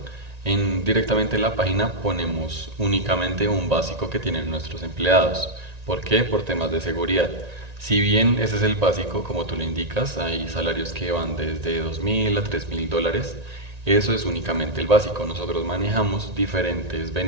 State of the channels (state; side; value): late; left; 1.9 ms